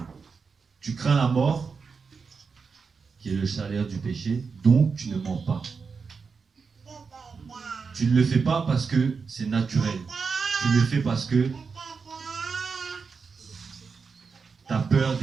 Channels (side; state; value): left; quieter; 5.2 dB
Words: Tu crains la mort, qui est le salaire du péché, donc tu ne mens pas. Tu ne le fais pas parce que c'est naturel. Tu le fais parce que tu as peur